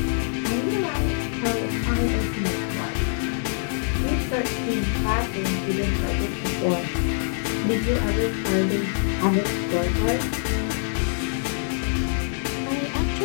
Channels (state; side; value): silent; right; digital silence